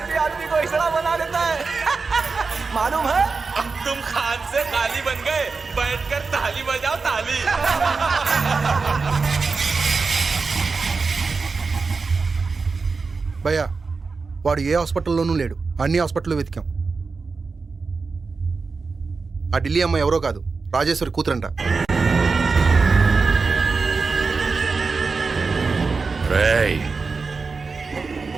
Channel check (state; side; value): quieter; left; 4.4 dB